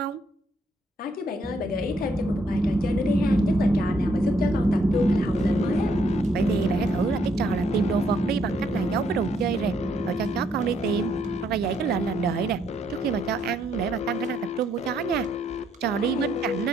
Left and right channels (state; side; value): normal; both; correlation 0.72